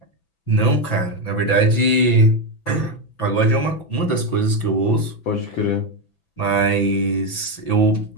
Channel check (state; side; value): late; right; 6.0 ms